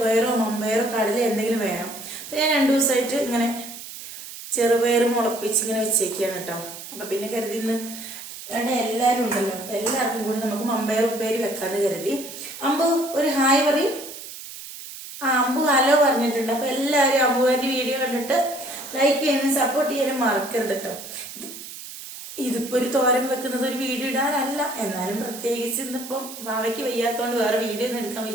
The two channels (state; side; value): noise; right; hiss, 12 dB below the sound